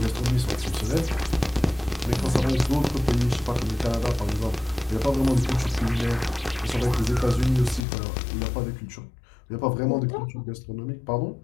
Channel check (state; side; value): drops out; right; at 7.9 s